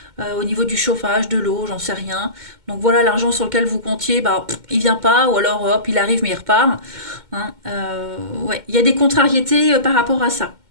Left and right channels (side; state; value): left; late; 2.1 ms